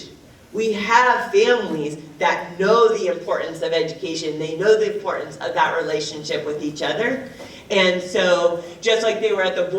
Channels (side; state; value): both; identical; correlation 1.00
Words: We have families that know the importance of education. They know the importance of that relationship with each other. And so, just like they were at the